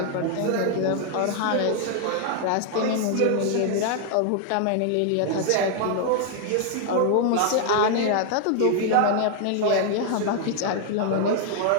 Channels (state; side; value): different; both; correlation 0.00